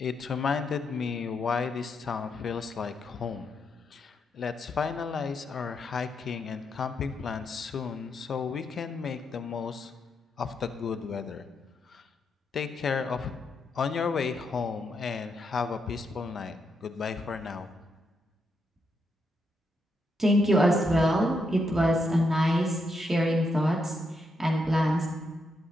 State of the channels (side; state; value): both; normal; correlation 0.81